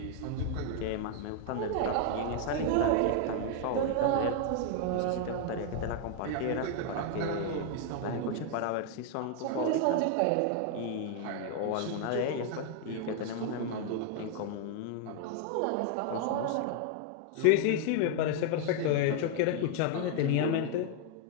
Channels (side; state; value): both; different; correlation 0.00